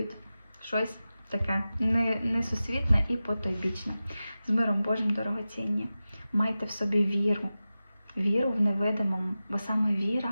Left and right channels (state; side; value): inverted; both; correlation -0.94